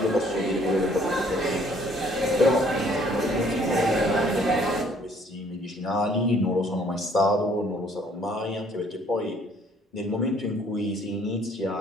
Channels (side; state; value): both; normal; correlation 0.61